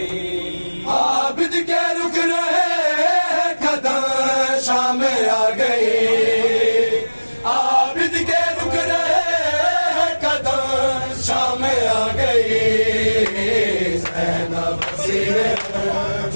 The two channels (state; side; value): inverted; both; correlation -1.00